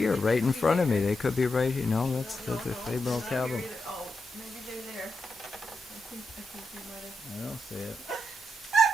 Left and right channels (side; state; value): both; normal; correlation 0.85